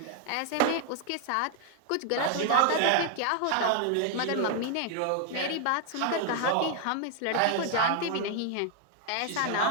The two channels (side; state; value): both; different; correlation 0.00